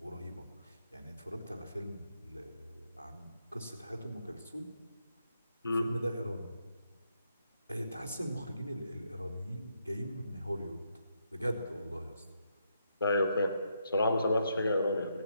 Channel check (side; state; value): both; inverted; correlation -0.78